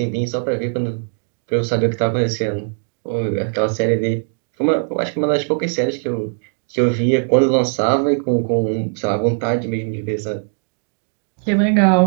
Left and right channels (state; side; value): silent; left; 62 dB below the other